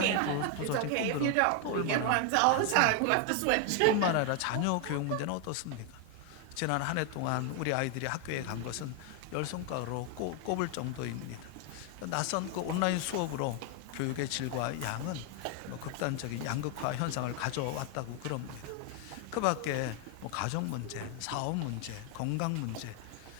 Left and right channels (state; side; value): different; both; correlation 0.01